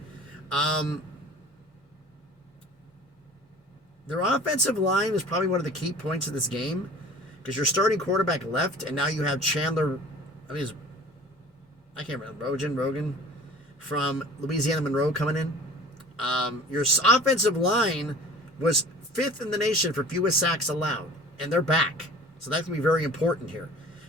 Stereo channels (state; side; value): normal; both; correlation 0.45